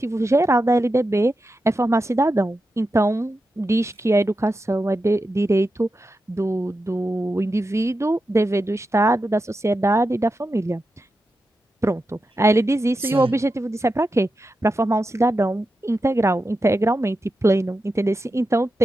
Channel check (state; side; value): normal; both; correlation 0.89